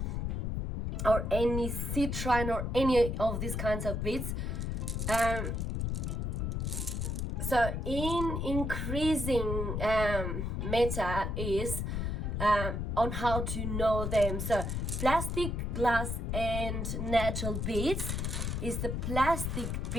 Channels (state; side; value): noise; left; rumble, 1 dB below the sound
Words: or any citrine, or any of these kinds of beads. So in increasing meta is on how to know them. So plastic, glass, and natural beads is the plastic